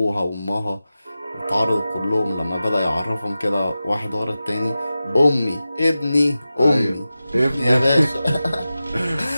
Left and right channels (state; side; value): inverted; both; correlation -0.94